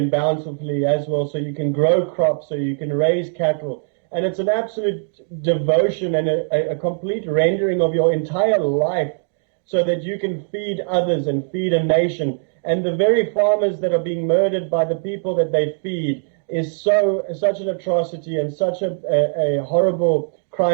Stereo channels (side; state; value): left; silent; digital silence